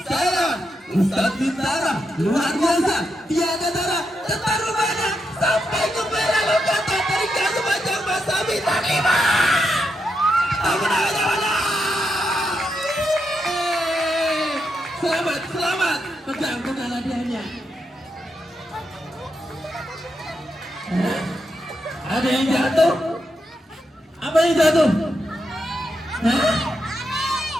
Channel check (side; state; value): both; normal; correlation 0.83